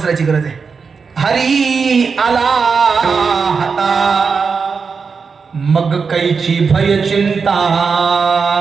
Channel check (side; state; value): left; quieter; 5.3 dB